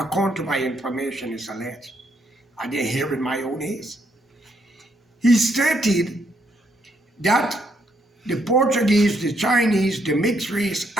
to my information, is alleged. I didn't hear in my own ears. He stated that the Portuguese, the Chinese, the mixed race,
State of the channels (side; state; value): both; normal; correlation 0.74